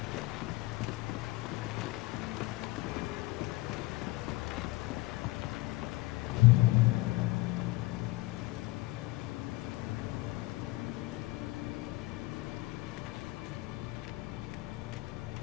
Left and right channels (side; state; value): right; quieter; 20.3 dB